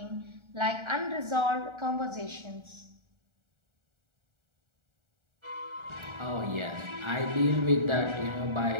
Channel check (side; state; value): left; late; 1.4 ms